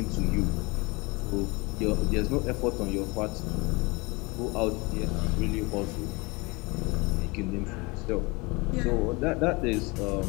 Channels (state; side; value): quieter; right; 26.1 dB